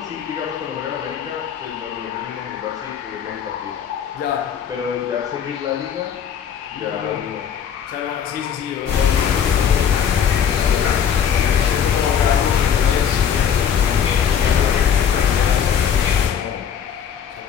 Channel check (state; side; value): quieter; right; 8.2 dB